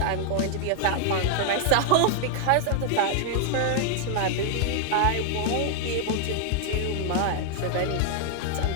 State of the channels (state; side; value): different; both; correlation 0.00